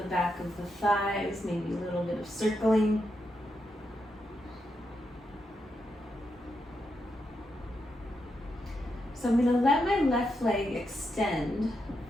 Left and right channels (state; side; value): normal; both; correlation 0.84